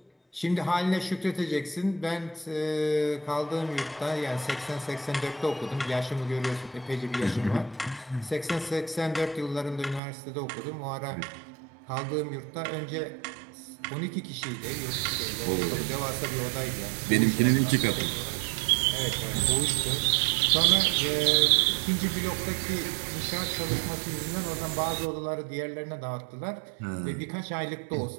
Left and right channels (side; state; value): left; drops out; at 10.0 s